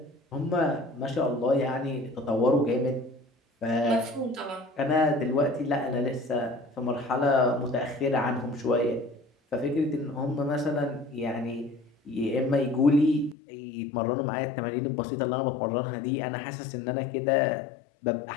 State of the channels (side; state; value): right; drops out; at 13.4 s